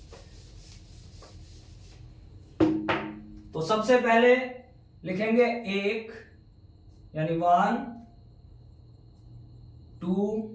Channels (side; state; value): both; identical; correlation 1.00